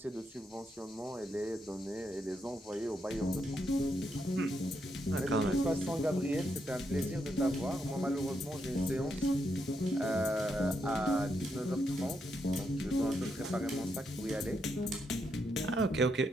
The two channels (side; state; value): both; normal; correlation 0.80